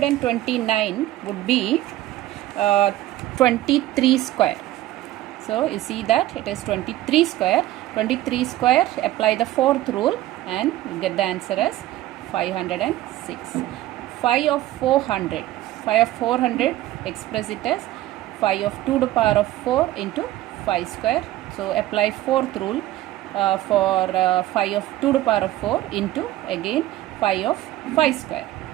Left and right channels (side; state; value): left; quieter; 15.2 dB